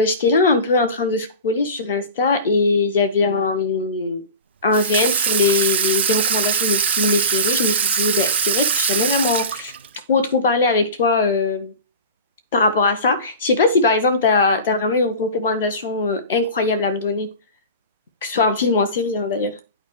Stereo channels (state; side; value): inverted; both; correlation -0.32